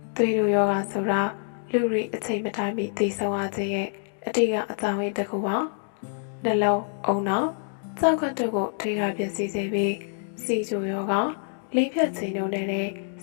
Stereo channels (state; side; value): silent; right; 61 dB below the other